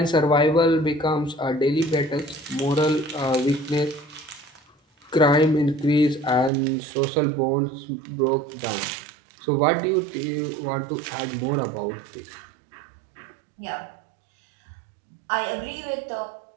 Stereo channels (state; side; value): drops out; left; at 6.5 s